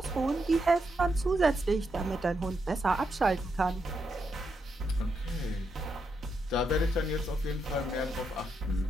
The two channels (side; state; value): both; normal; correlation 0.82